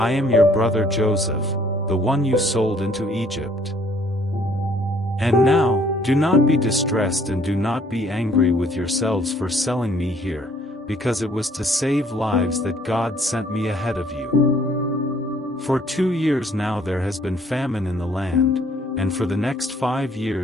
"I am your brother Joseph, the one you sold into Egypt. And now, do not be distressed and do not be angry with yourselves for selling me here, because it was to save lives that God sent me ahead of you. For 2 years now there has been famine in the land, and for the next 5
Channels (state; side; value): normal; both; correlation 0.61